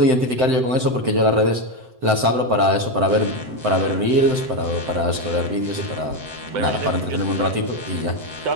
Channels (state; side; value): late; left; 7.8 ms